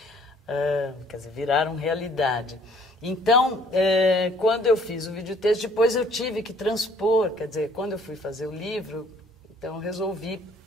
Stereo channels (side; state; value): both; normal; correlation 0.59